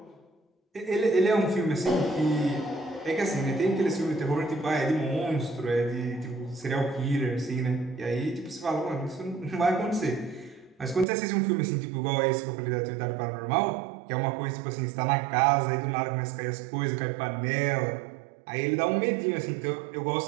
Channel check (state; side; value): drops out; left; at 11.1 s